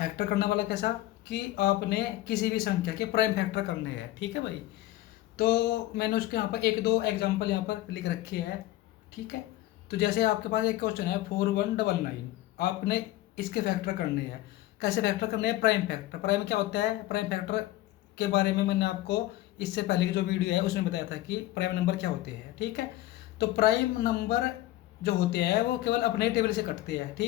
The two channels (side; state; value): right; quieter; 16.0 dB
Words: करने वाला कैसा कि आपने किसी भी संख्या के प्राइम फैक्टर करने हैं। ठीक है भाई, तो मैंने उसके यहाँ पर एक दो एग्जांपल यहाँ पर लिख रखी है। ठीक है, तो जैसे आपके पास एक क्वेश्चन है 4199, आपने इसके फैक्टर करने हैं। कैसे फैक्टर करने हैं? Prime factor. प्राइम क्या होता है? प्राइम फैक्टर के बारे में मैंने आपको इससे पहले की जो वीडियो है उसमें बताया था कि प्राइम नंबर क्या होते हैं। ठीक है, तो प्राइम नंबर जो होते हैं वो केवल अपने टेबल से कटते हैं।